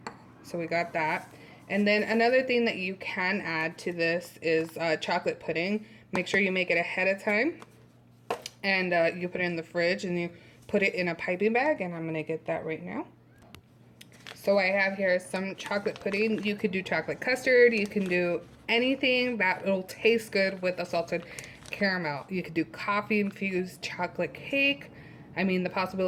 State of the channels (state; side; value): identical; both; correlation 1.00